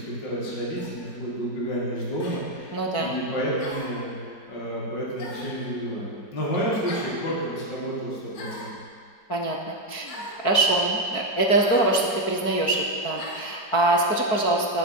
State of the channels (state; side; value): late; right; 4.6 ms